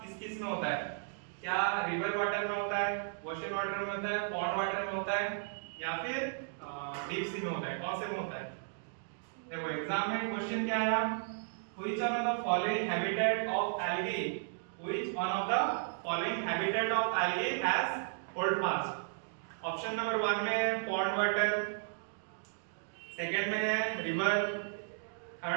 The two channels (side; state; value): left; silent; digital silence